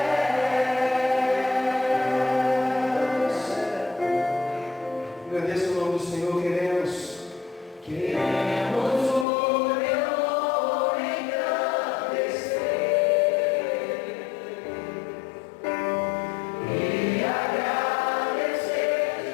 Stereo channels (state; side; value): drops out; right; at 9.2 s